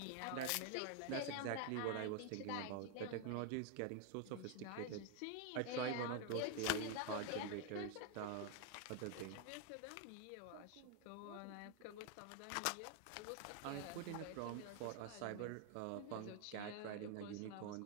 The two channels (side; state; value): both; different; correlation 0.01